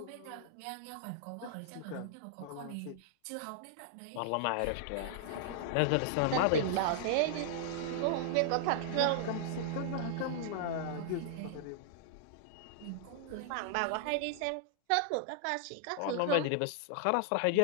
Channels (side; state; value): both; different; correlation -0.01